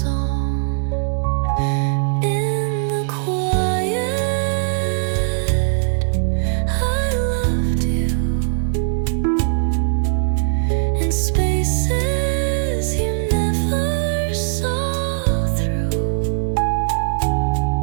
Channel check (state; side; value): silent; left; digital silence